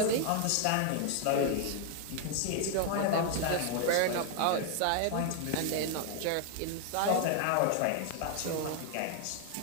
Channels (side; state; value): both; different; correlation 0.00